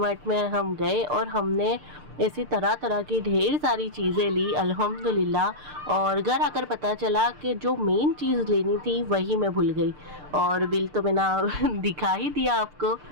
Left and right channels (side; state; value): left; late; 6.7 ms